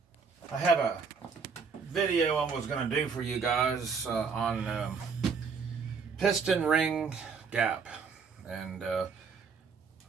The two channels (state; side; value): quieter; left; 5.4 dB